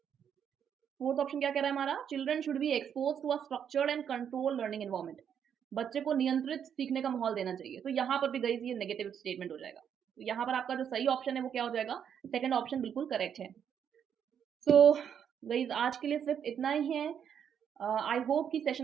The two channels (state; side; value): quieter; left; 8.3 dB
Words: फोर्थ ऑप्शन क्या कह रहा है हमारा? Children should be expose to a structured and control learning environment. बच्चे को नियंत्रित सीखने का माहौल देना चाहिए। तो यहाँ पर भी गई ये नेगेटिव स्टेटमेंट हो जाएगा। तो यहाँ पर आपका जो सही ऑप्शन है वो क्या हो जाएगा? सेकंड ऑप्शन बिल्कुल करेक्ट है। सो गाइस आज के लिए सिर्फ इतना ही है। आई होप कि